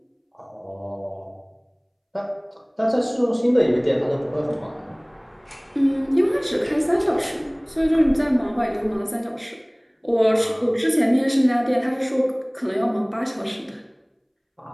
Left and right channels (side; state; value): both; identical; correlation 1.00